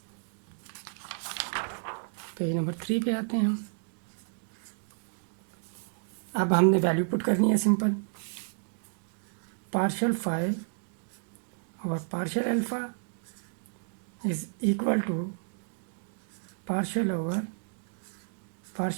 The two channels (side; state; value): left; silent; digital silence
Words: पेज नंबर 3 पे आते हैं हम। अब हमने वैल्यू पुट करनी है सिंपल, पार्शियल फाई और partial alpha is equal to partial over